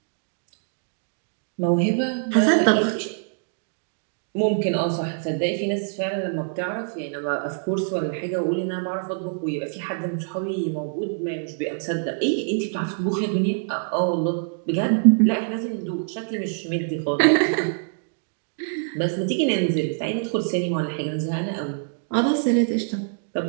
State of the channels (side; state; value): left; silent; digital silence